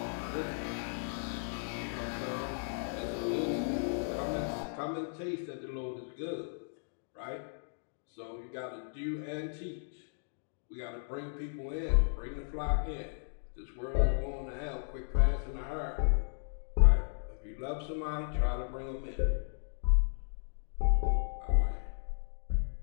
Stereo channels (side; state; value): right; silent; digital silence